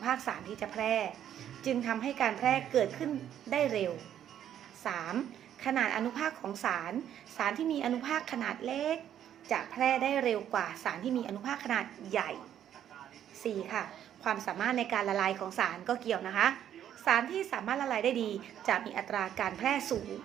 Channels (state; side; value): quieter; left; 10.3 dB